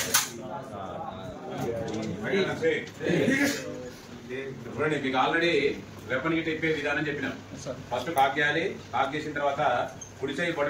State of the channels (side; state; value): both; identical; correlation 1.00